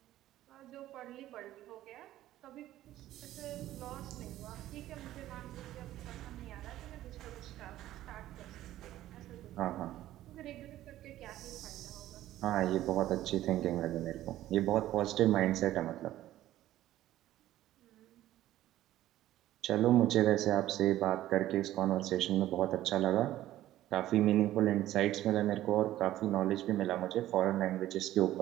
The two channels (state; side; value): quieter; left; 14.1 dB